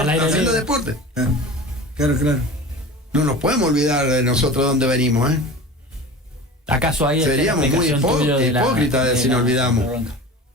deporte. Claro, claro. No nos podemos olvidar de nosotros dónde venimos, ¿eh? ¿Acaso ahí seríamos muy hipócritas si nos olvidamos?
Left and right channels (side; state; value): both; normal; correlation 0.35